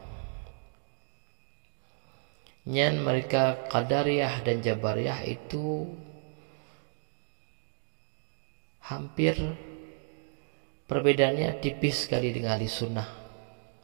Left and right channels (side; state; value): left; silent; digital silence